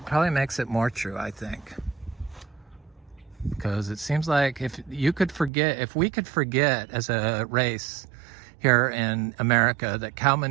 probably makes it more true, I think. Because it seems like if we could forget as a race here in America that cow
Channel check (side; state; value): left; drops out; at 5.5 s